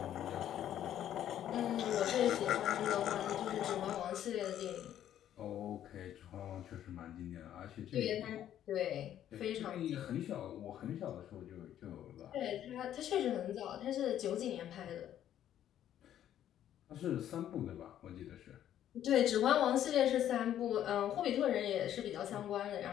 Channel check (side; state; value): right; quieter; 11.1 dB